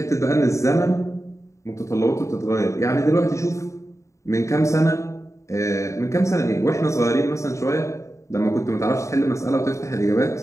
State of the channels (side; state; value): right; late; 0.14 ms